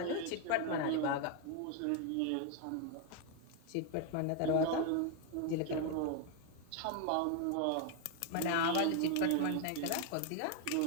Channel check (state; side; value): different; both; correlation 0.01